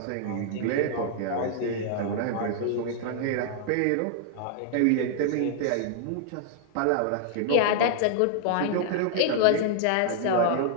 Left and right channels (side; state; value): both; different; correlation -0.01